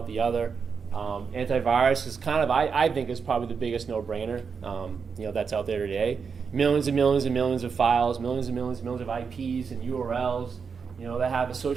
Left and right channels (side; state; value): left; quieter; 5.8 dB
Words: the other. Antivirus is kind of, I think, is probably the biggest no-brainer that's out there today. Millions and millions and millions of files, millions and millions and millions of IPs and URLs, that have